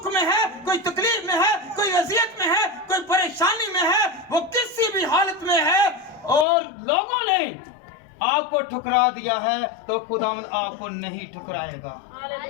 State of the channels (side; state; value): right; drops out; at 6.5 s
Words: में है, कोई तकलीफ में है, कोई अजियत में है, कोई परेशानी में है, वो किसी भी हालत में है और लोगों ने आपको ठुकरा दिया है, तो खुदावंद आपको नहीं ठुकराएगा।